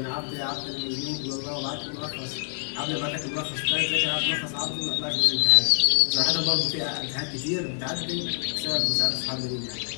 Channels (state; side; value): silent; right; digital silence